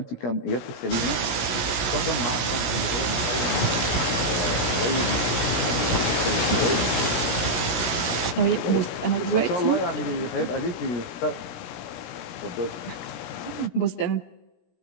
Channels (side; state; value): right; late; 17 ms